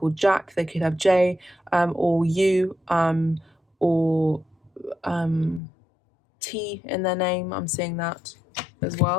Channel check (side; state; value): right; drops out; at 5.6 s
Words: Jack. They could have J, or U, or T in their name. I'm seeing that as